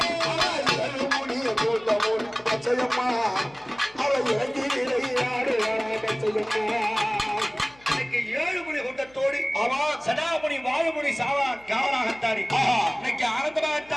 மூடி கூட்டம் பச்சையம்மா அவ இறங்கிறாடுறா பச்சையம்மா கூட்டத்தோடு சடாமுனி வாழுமுனி சாவா காவலாகத்தானே இன்னைக்கு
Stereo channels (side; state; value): left; noise; hum, 27 dB below the sound